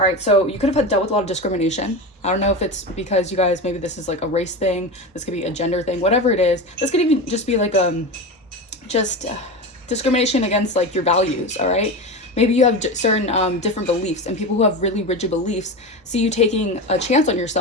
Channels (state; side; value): normal; both; correlation 0.23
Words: right, so you could have dealt with a lot of discrimination. I don't know if it's because you guys, maybe this is like a race thing. This could be a gender thing, whatever it is. This could even just be like discrimination against like your values. All right, Maybe you have certain different beliefs, and people who have really rigid beliefs see you taking a chance on